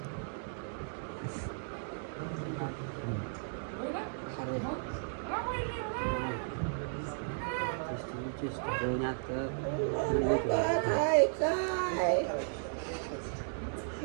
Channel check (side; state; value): left; silent; digital silence